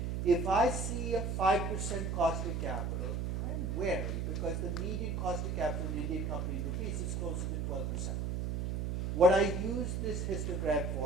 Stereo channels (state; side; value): noise; right; hum, 1 dB below the sound